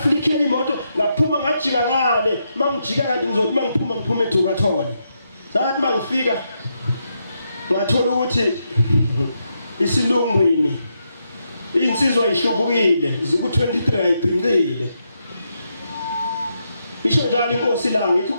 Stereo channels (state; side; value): inverted; both; correlation -0.82